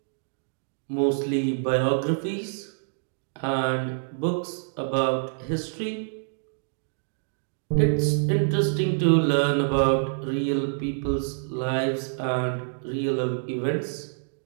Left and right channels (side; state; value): left; silent; digital silence